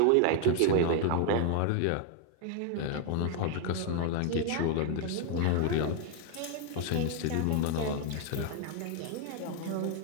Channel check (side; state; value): both; different; correlation 0.00